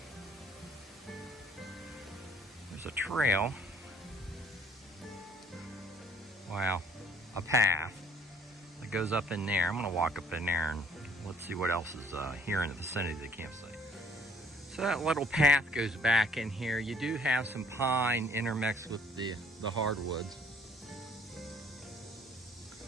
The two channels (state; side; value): normal; both; correlation 0.59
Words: There's a trail. Wow, a path that goes up in there. I'm gonna walk up in there and let's see what else is here in the vicinity of the campsite. So that little path goes back in here. You do have some pine intermixed with the hardwoods.